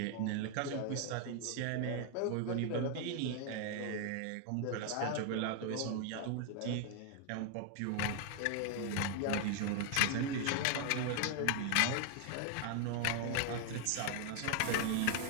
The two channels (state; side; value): different; both; correlation 0.00